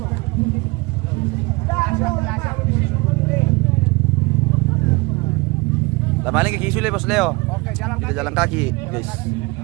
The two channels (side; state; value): left; quieter; 25.0 dB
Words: Paling kaki sulit Bos Leo. Oke, jalan Kita jalan kaki, guys.